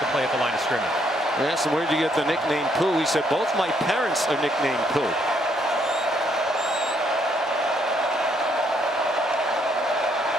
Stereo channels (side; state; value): both; normal; correlation 0.71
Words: a play at the line of scrimmage. I asked him, where'd you get the nickname Pooh? He said, both my parents are nicknamed Pooh.